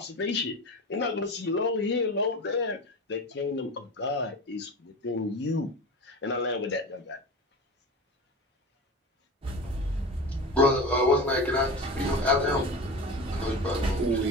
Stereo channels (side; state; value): both; normal; correlation 0.29